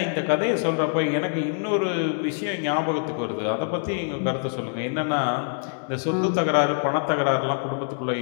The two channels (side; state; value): right; silent; digital silence